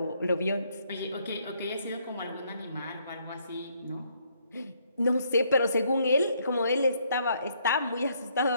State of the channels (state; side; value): inverted; both; correlation -0.70